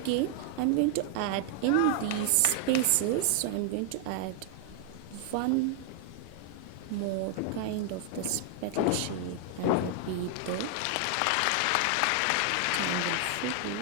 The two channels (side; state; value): both; different; correlation 0.00